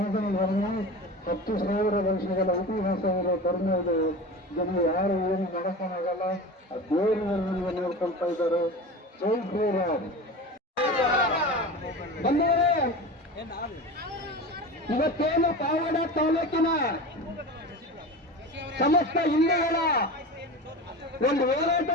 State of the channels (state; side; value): normal; both; correlation 0.30